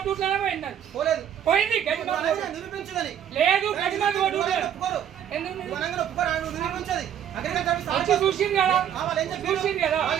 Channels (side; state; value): left; quieter; 9.5 dB